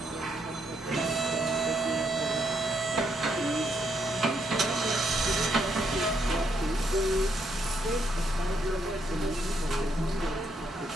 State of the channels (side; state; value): both; normal; correlation 0.75